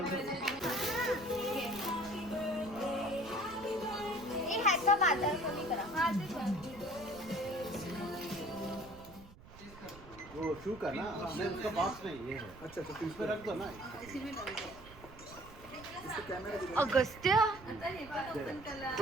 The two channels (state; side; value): noise; right; rumble, 19 dB below the sound